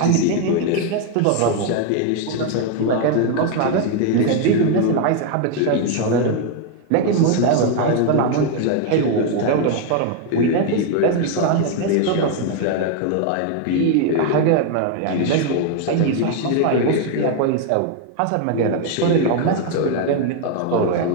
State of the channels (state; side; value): different; both; correlation 0.01